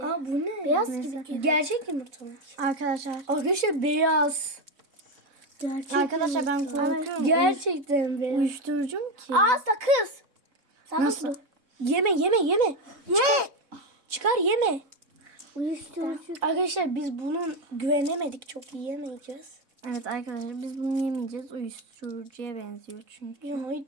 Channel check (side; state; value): left; late; 3.6 ms